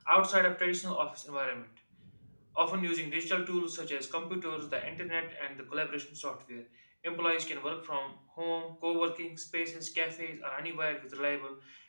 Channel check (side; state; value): both; inverted; correlation -1.00